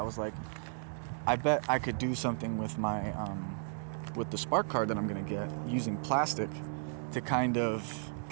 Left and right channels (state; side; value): silent; left; digital silence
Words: was like, I bet I could do something with my with the Spark card that I'm gonna get using plastic to kind of